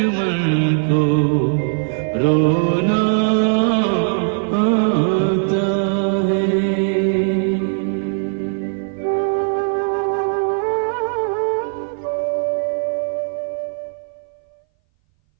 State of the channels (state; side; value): silent; left; 61 dB below the other